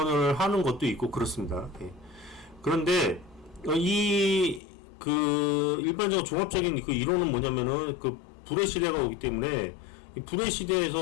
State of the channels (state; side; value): drops out; right; at 4.6 s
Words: 하는 것도 있고 그렇습니다. 예. 그런데 일반적으로 종합적인 그 이론은 뭐냐면은 그 불의 시대가 오기 때문에 이 불의